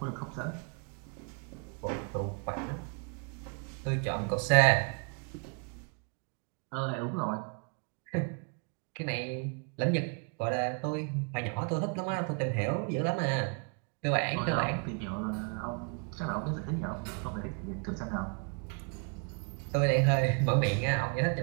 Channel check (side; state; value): left; quieter; 38.5 dB